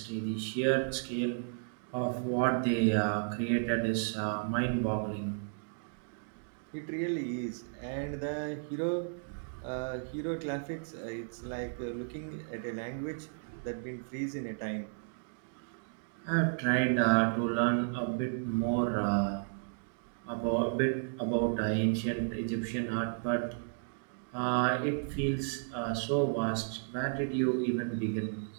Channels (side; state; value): left; silent; digital silence